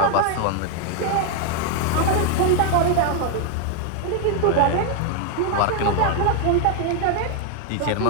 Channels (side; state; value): both; different; correlation 0.00